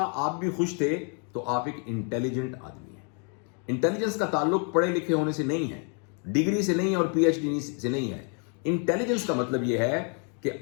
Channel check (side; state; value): right; quieter; 39.9 dB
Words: آپ بھی خوش تھے، تو آپ ایک انٹیلیجنٹ آدمی ہیں. انٹیلیجنس کا تعلق پڑھے لکھے ہونے سے نہیں ہے، ڈگری سے نہیں ہے اور پی ایچ ڈی سے نہیں ہے. انٹیلیجنس کا مطلب یہ ہے کہ